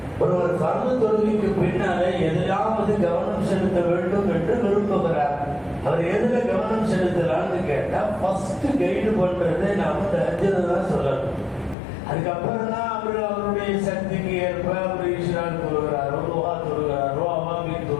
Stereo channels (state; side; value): drops out; right; at 11.8 s